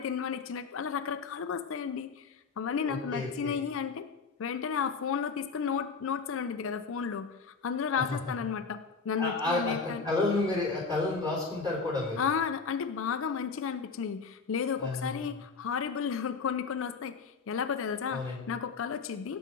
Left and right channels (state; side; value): quieter; right; 5.0 dB